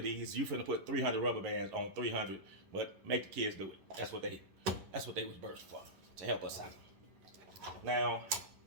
these, you finna put 300 rubber bands on 300. But make the kids do it. That's what they was birthed for, to help us out. Now,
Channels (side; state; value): left; late; 11 ms